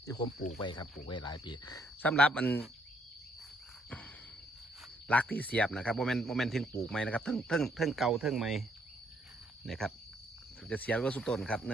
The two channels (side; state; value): both; normal; correlation 0.70